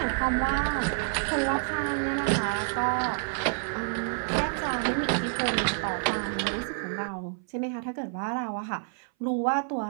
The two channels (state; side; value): silent; left; 58 dB below the other